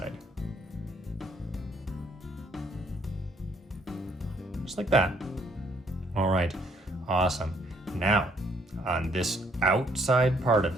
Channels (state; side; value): normal; both; correlation 0.66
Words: Just like that. All right, awesome. Now, on this outside part of